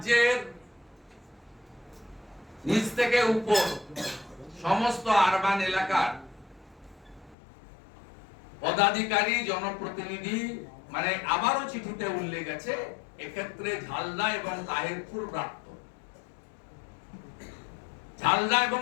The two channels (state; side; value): drops out; right; at 7.4 s